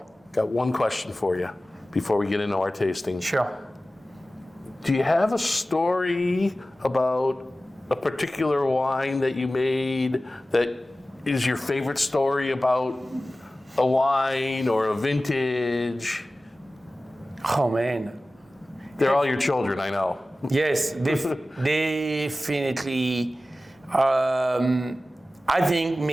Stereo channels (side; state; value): both; normal; correlation 0.96